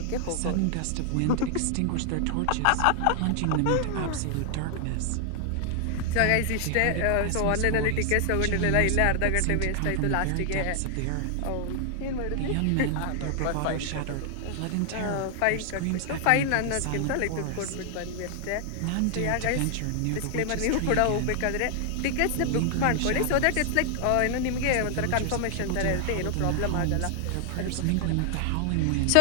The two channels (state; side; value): different; both; correlation 0.00